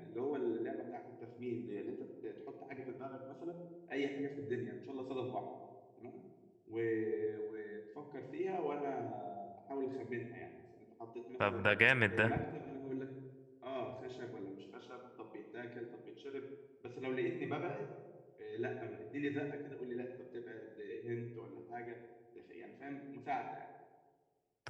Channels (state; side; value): identical; both; correlation 1.00